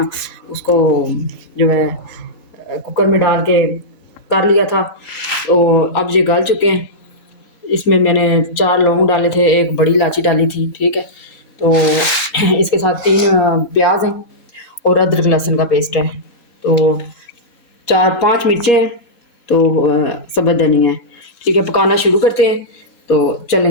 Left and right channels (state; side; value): late; right; 4.0 ms